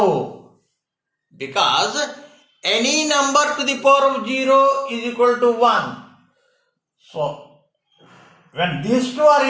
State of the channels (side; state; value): both; identical; correlation 1.00